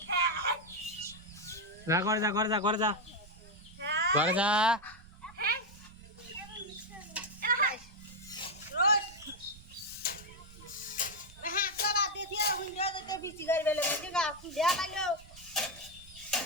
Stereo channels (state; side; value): noise; right; rumble, 21 dB below the sound